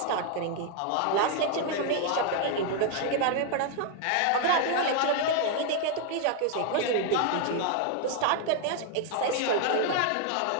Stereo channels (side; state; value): both; different; correlation 0.00